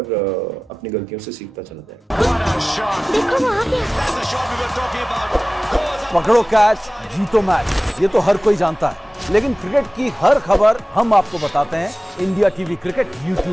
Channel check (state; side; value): normal; both; correlation 0.97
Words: अपनी गलतियों से सीखता चला जाएगा। What a shot! देखो वो आ गया। That's the shot we were talking about. पकड़ो कैच, जीतो मैच, ये तो हर कोई जानता है। लेकिन क्रिकेट की हर खबर हम आपको बताते हैं India TV cricket